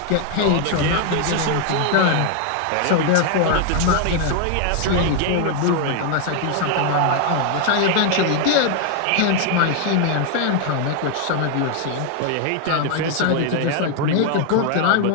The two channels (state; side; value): different; both; correlation 0.00